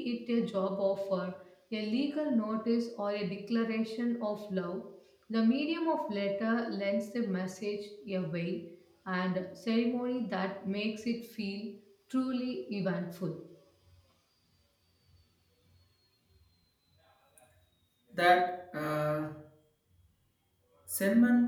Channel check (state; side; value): identical; both; correlation 1.00